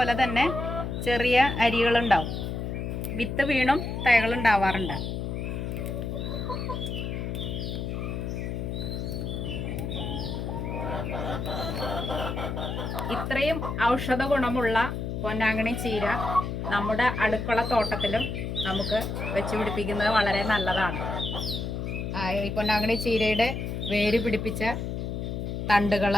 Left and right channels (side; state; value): left; noise; hum, 4 dB below the sound